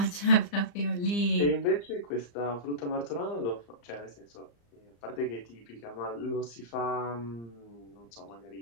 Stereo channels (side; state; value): right; late; 35 ms